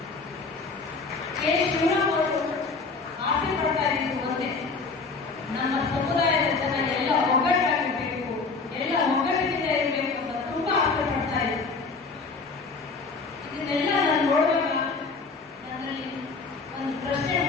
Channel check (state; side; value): quieter; right; 4.3 dB